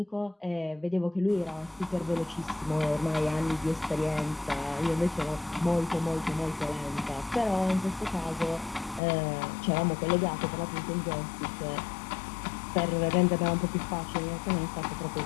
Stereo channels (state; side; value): drops out; right; at 9.0 s